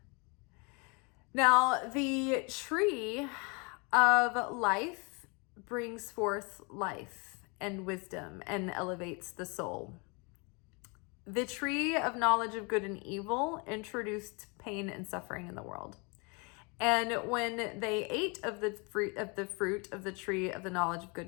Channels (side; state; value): right; quieter; 31.2 dB